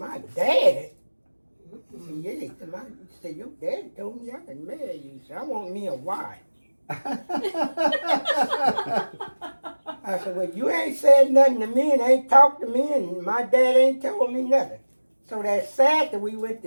daddy?" He said, "Yeah." He said, "Your daddy told me I could marry you." He said, "I want me a wife." I I said, well, you ain't said nothing to me and ain't talked to me and my dad ain't told me nothing. So that Saturday we went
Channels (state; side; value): inverted; both; correlation -1.00